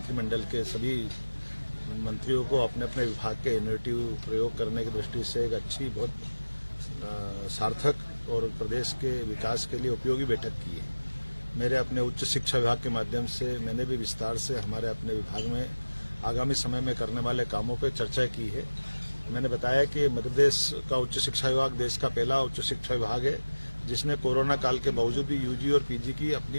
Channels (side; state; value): both; inverted; correlation -1.00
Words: के सभी मंत्रियों को अपने अपने विभाग के इनोवेटिव प्रयोग करने की दृष्टि से एक अच्छी बहुत सार्थक और प्रदेश के विकास के लिए उपयोगी बैठक की है। मेरे अपने उच्च शिक्षा विभाग के माध्यम से मैंने भी विस्तार से हमारे अपने विभाग में आगामी समय में करने वाले कामों पर चर्चा की है। मैंने बताया कि मध्य प्रदेश का उच्च शिक्षा विभाग देश का पहला उच्च शिक्षा विभाग है जिसने कोरोना काल के बावजूद भी यूजी और पीजी की अपनी